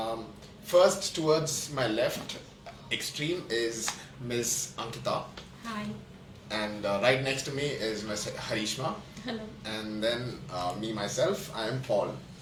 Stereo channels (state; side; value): identical; both; correlation 1.00